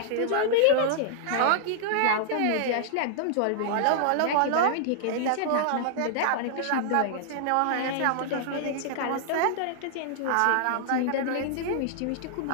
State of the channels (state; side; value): different; both; correlation -0.01